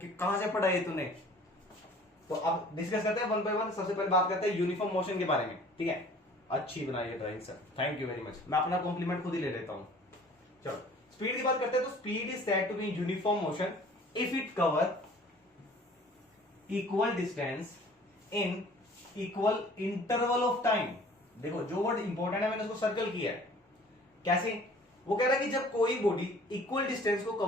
कहां से पढ़ा है तूने। तो अब डिस्कस करते हैं वन बाय वन। सबसे पहले बात करते हैं यूनिफॉर्म मोशन के बारे में, ठीक है। अच्छी बनाई है drawing sir, thank you very much, मैं अपना कॉम्प्लीमेंट खुद ही ले लेता हूं। चलो स्पीड की बात करते हैं, तो speed is said to be uniform motion if it cover equal distance in equal interval of time. देखो जो वर्ड इंपॉर्टेंट है मैंने उसको सर्कल किया है, कैसे, वो कह रहा है कि जब कोई बॉडी इक्वल डिस्टेंस को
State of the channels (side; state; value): both; normal; correlation 0.50